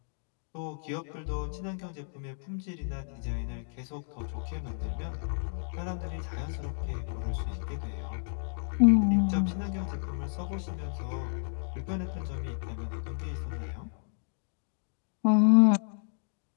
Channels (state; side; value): silent; right; digital silence